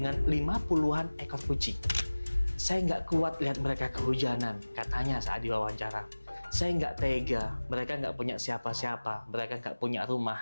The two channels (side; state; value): both; inverted; correlation -1.00